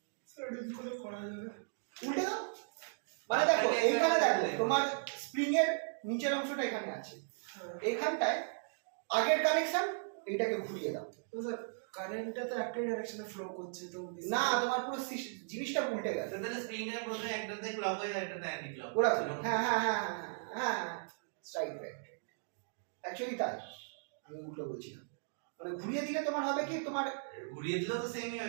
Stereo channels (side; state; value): left; silent; digital silence